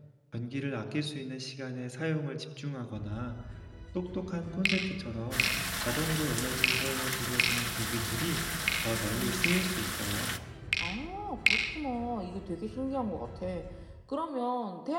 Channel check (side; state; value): both; identical; correlation 1.00